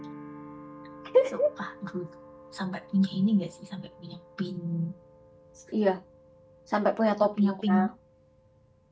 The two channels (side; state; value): both; identical; correlation 1.00